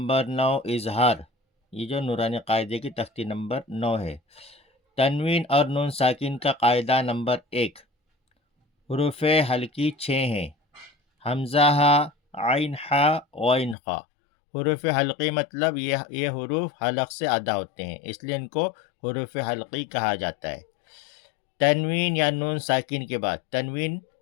9 اظہار، یہ جو نورانی قاعدے کی تختی نمبر 9 ہے۔ تنوین اور نون ساکن کا قاعدہ نمبر 1، حروف حلقی 6 ہیں: حمزہ ہا، عین ہا، غین خا۔ حروف حلقی مطلب یہ حروف حلق سے ادا ہوتے ہیں، اس لیے ان کو حروف حلقی کہا جاتا ہے۔ تنوین یا نون ساکن کے بعد تنوین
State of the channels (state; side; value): drops out; right; at 13.8 s